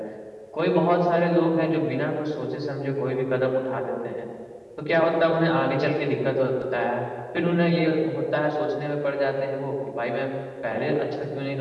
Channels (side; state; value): both; identical; correlation 1.00